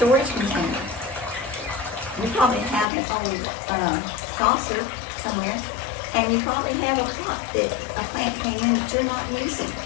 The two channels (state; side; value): drops out; right; at 2.9 s